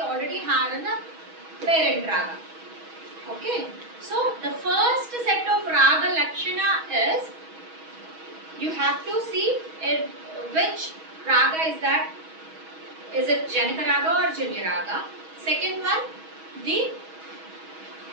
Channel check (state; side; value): late; left; 6.2 ms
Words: have in the parent raga. Okay. So the first set of raga lakshana is, you have to see which raga is that. Is it Janaka raga or Janya raga? Second one, the